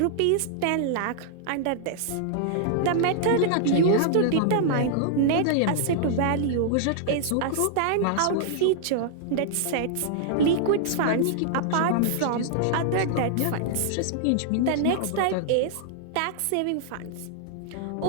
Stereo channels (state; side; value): different; both; correlation -0.01